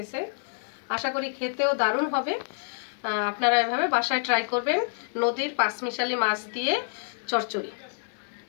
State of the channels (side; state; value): right; silent; 57 dB below the other